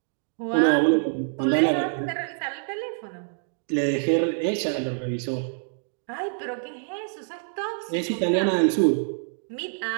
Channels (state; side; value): silent; left; digital silence